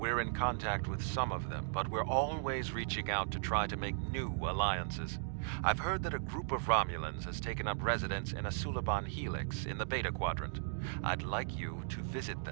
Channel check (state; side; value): silent; left; digital silence